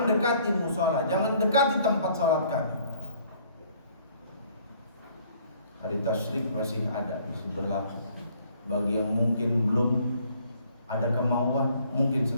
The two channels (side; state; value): both; inverted; correlation -0.60